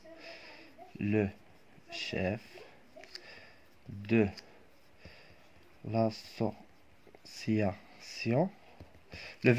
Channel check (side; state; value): both; identical; correlation 1.00